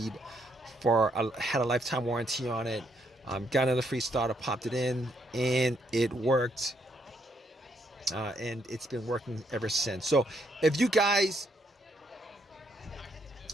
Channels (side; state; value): both; normal; correlation 0.74